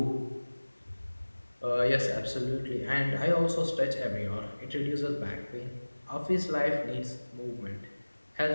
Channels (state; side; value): inverted; both; correlation -1.00